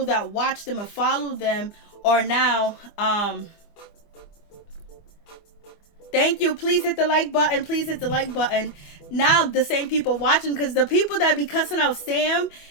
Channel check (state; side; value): late; right; 24 ms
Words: that watch them and follow them are now thank you. Please hit the like button. Please hit the like button. Now the same people watching, because the people that be cussing out Sam